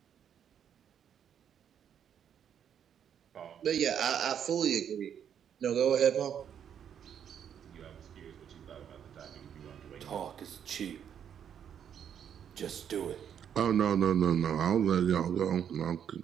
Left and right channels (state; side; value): quieter; left; 8.7 dB